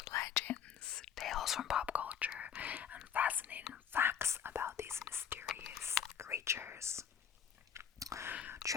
legends, tales from pop culture, and fascinating facts about these mysterious creatures.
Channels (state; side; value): quieter; right; 8.4 dB